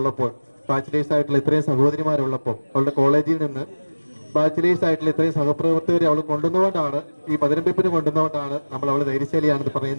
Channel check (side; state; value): both; inverted; correlation -1.00